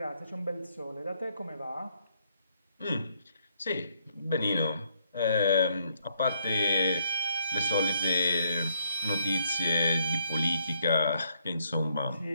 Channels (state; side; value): inverted; both; correlation -0.71